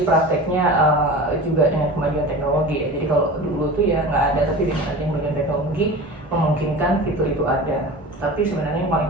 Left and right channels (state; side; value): normal; both; correlation 0.34